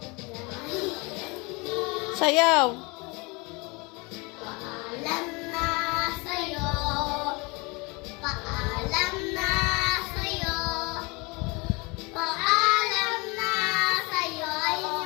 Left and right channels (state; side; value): quieter; right; 27.6 dB